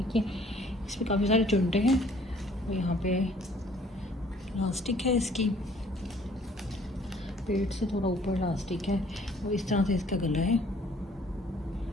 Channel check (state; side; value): normal; both; correlation 0.58